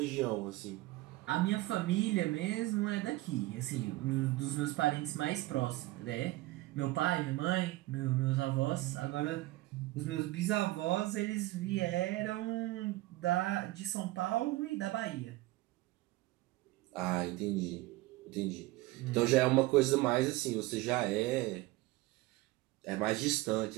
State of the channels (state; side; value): quieter; left; 18.7 dB